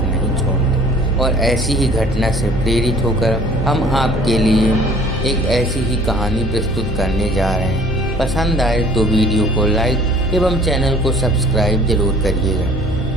नहीं छोड़ते। और ऐसी ही घटना से प्रेरित होकर हम आपके लिए एक ऐसी ही कहानी प्रस्तुत करने जा रहे हैं। पसंद आए तो वीडियो को लाइक एवं चैनल को सब्सक्राइब जरूर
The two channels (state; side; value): normal; both; correlation 0.53